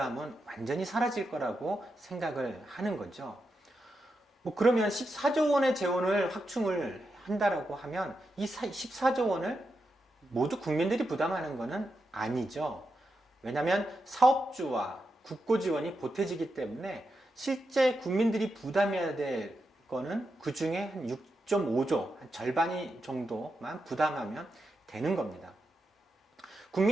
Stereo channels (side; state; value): both; normal; correlation 0.86